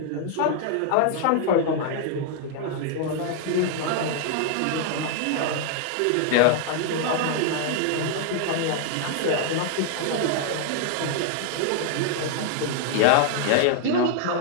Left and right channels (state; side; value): different; both; correlation 0.00